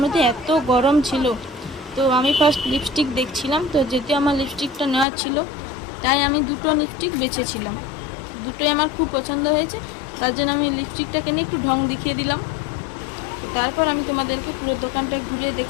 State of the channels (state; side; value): drops out; right; at 5.1 s